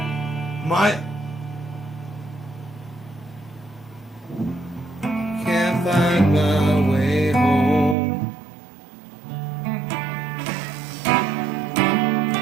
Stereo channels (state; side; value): drops out; left; at 8.0 s